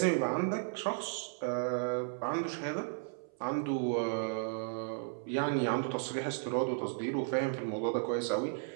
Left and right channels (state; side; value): silent; left; 55 dB below the other